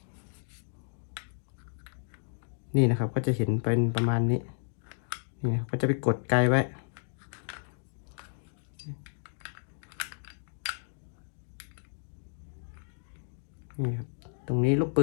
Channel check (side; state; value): right; silent; digital silence